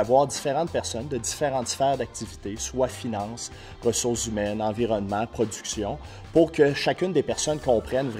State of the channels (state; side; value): identical; both; correlation 1.00